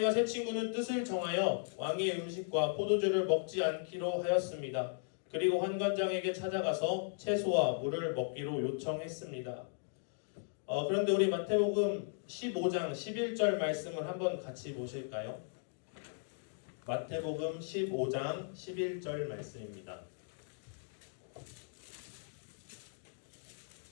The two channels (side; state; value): right; silent; digital silence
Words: 세 친구는 뜻을 정하여 왕의 음식과 포도주를 먹지 않기로 하였습니다. 그리고 환관장에게 찾아가서 채소와 물을 먹기로 요청했습니다. 그런데 우리 마태복음 15장 11절 말씀을 한번 같이 보실까요? 마태복음 15장 11절 말씀입니다.